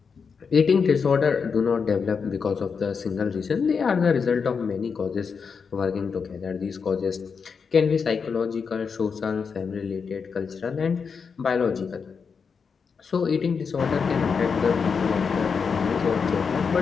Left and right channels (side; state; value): right; quieter; 5.7 dB